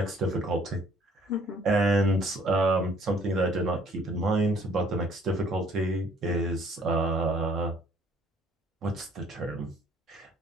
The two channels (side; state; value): both; normal; correlation 0.59